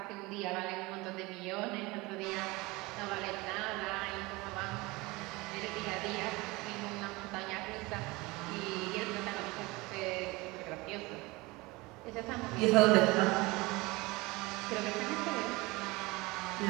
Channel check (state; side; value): quieter; left; 22.9 dB